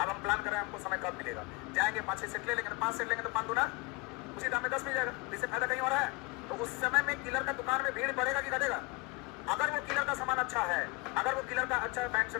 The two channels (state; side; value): quieter; right; 25.6 dB